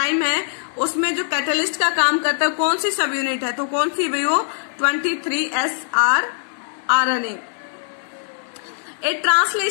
है उसमें जो कैटलिस्ट का काम करता है कौन सी सब यूनिट है, तो कौन सी भाई वो 23SR RNA. A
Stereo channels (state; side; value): silent; right; digital silence